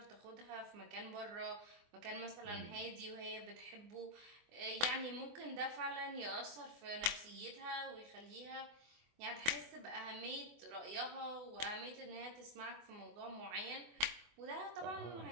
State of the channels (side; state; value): left; late; 24 ms